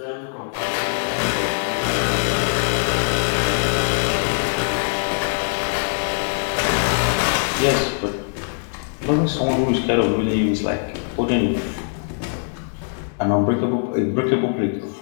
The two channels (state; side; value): silent; right; 64 dB below the other